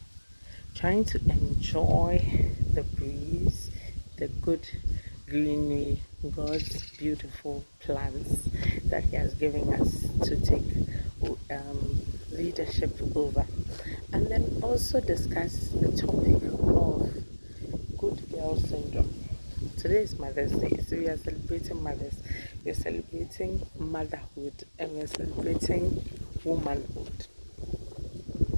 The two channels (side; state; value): both; inverted; correlation -1.00